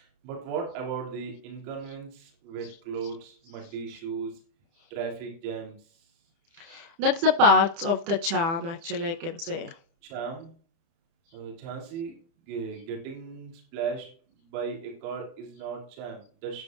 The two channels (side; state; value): left; late; 30 ms